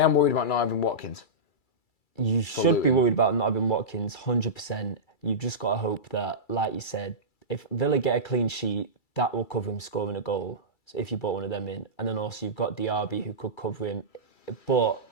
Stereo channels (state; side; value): late; right; 2.3 ms